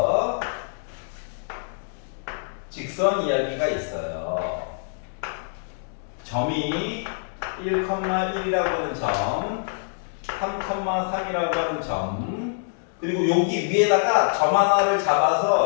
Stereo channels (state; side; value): silent; right; digital silence